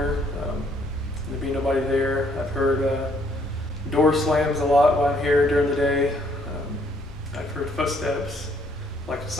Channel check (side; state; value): both; normal; correlation 0.66